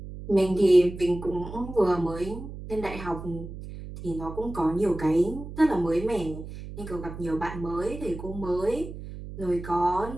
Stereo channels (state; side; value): noise; right; hum, 11 dB below the sound